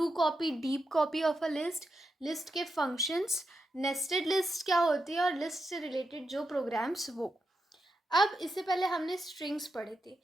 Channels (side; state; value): both; normal; correlation 0.86